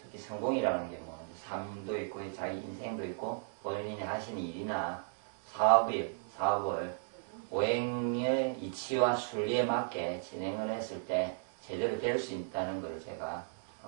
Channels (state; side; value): silent; left; digital silence